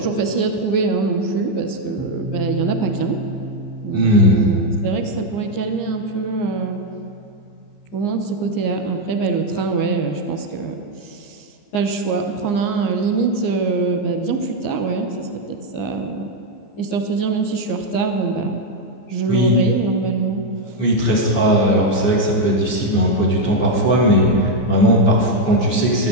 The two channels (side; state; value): right; late; 15 ms